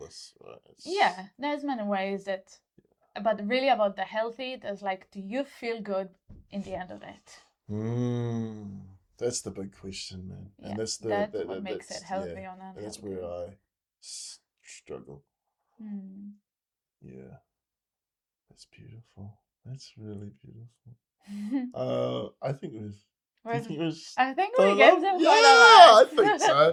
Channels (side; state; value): both; identical; correlation 1.00